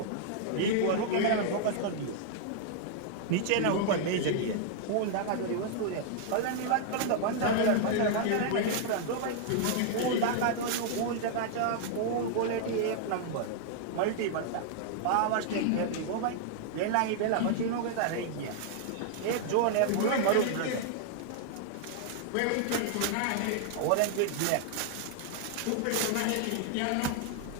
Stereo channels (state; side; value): different; both; correlation -0.01